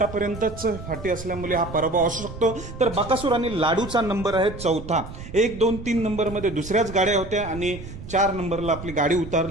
फाटी असल्यामुळे हा पराभव असू शकतो. तर बकासूर आणि लाडूचा नंबर आहे चौथा. 1, 2, 3 नंबरमध्ये दुसऱ्याच गाड्या होत्या आणि 4 नंबरला आपली गाडी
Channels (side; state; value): right; noise; rumble, 12 dB below the sound